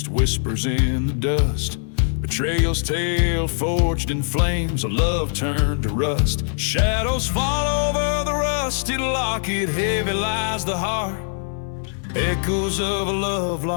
whispers in the dust. Betrayal's tale forged in flames, a love turned to rust. Shadows fall over the rusted locket, heavy lies the heart. Echoes of a love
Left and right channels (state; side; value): silent; right; digital silence